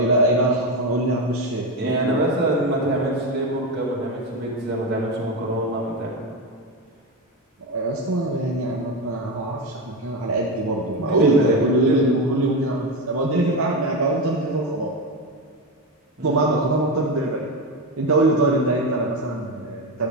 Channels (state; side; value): normal; both; correlation 0.15